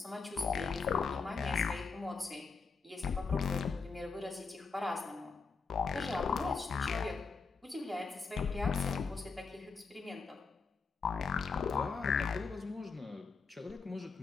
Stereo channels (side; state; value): right; quieter; 4.9 dB